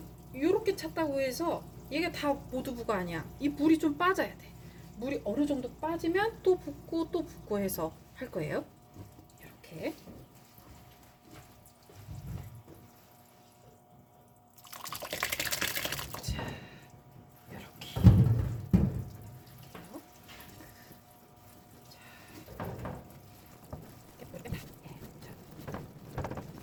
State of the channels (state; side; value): identical; both; correlation 1.00